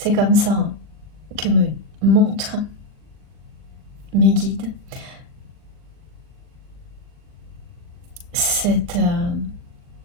comme ça que me montrent mes guides cette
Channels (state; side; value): late; left; 39 ms